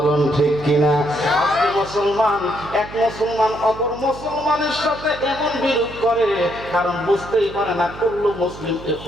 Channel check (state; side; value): noise; right; hum, 15 dB below the sound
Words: ঠিক কিনা? আজকে মুসলমান এক মুসলমান অপর মুসলমানের সাথে এমন বিরোধ করে, কারণ বুঝতেই পারে না কুল্লু মুসলিম